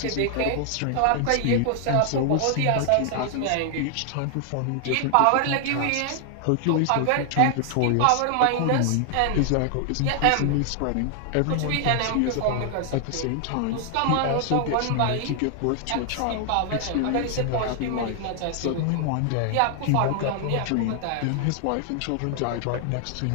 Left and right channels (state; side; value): different; both; correlation 0.00